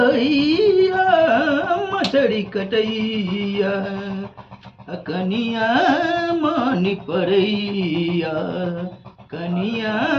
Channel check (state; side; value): identical; both; correlation 1.00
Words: मछड़ी कटैया कनिया मानी पड़ैया कनिया